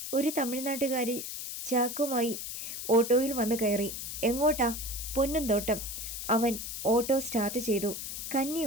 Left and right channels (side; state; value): left; noise; hiss, 6 dB below the sound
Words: ഒരു തമിഴ്നാട്ടുകാരി ചാക്കുമായി ഓട്ടോയിൽ വന്ന് കയറി. എങ്ങോട്ടാ? പൊന്നുംതോട്ടം. അവൻ ഓട്ടോ സ്റ്റാർട്ട് ചെയ്തു. കന്നി